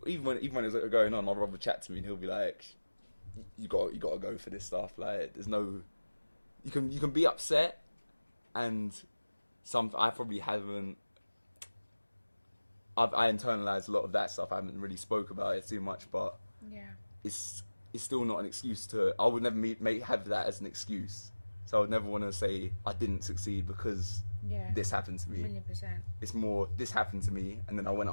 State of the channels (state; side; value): inverted; both; correlation -1.00